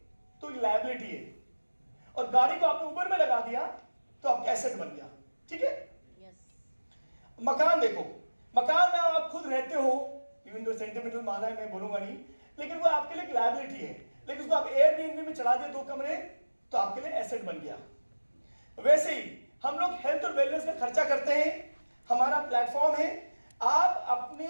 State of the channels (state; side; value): inverted; both; correlation -1.00